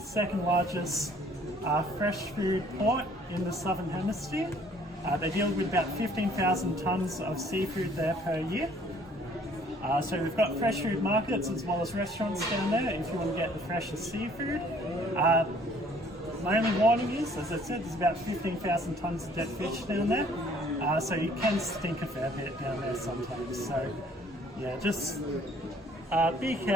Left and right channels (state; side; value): normal; both; correlation 0.58